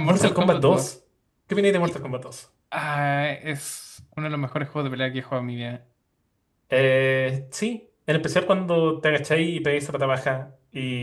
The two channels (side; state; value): both; identical; correlation 1.00